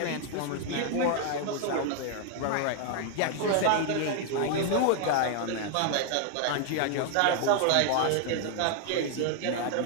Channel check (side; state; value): both; different; correlation 0.00